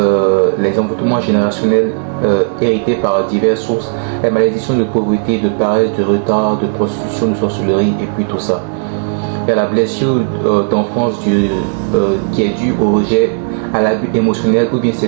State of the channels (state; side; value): silent; left; 60 dB below the other